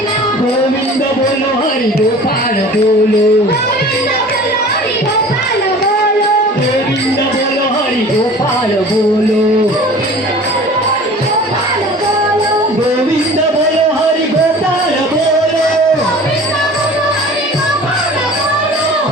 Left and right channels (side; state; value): both; normal; correlation 0.43